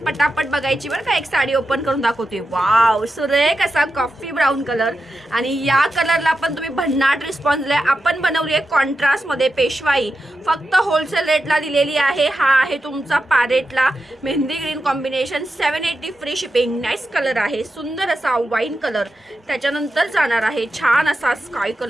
बघायची बरं का. एक साडी ओपन करून दाखवते. वाव, सुरेख असा कॉफी ब्राऊन कलर. आणि या कलरला पण तुम्ही भन्नाट रिस्पॉन्स दिलाय. आपण बनवली आहे कॉन्ट्रास्ट मध्ये पेशवाई, फक्त होलसेल रेटला दिलेली आहे. हा आहे तुमचा पॅरेटला mehndi green combination, 780 free shipping. Nice colour आहे, सुंदर असा वाईन कलर. त्याच्यानंतर जाणार आहे छान असा स्काय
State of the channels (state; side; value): normal; both; correlation 0.89